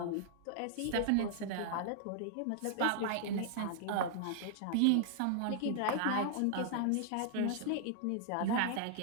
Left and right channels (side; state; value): both; different; correlation -0.01